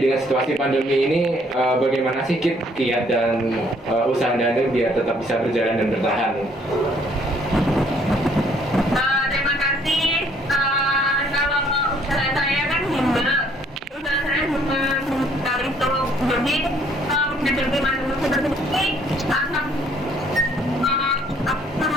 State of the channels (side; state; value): both; normal; correlation 0.63